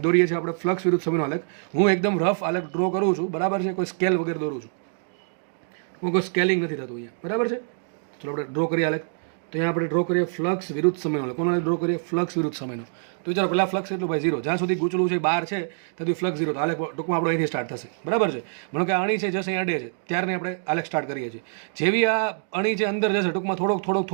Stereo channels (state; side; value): silent; left; digital silence